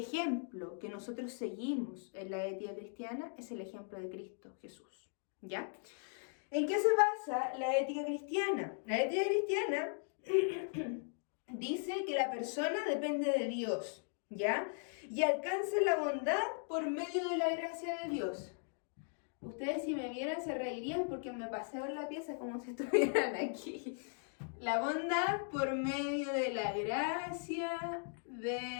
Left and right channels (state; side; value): silent; right; 52 dB below the other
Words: que nosotros seguimos en la ética cristiana es el ejemplo de Cristo Jesús, ¿ya? ¿En qué se basa la ética cristiana? La ética cristiana dice que la persona depende de Dios, ¿ya? Y alcanza la bondad por medio de la gracia de Dios. Ustedes, si me vieran, se reirían porque me paseo en la pieza como si estuvieran aquí. La bondad por medio de la gracia